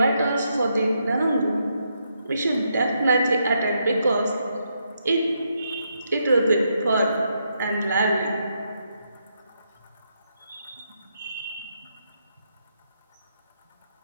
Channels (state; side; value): inverted; both; correlation -0.79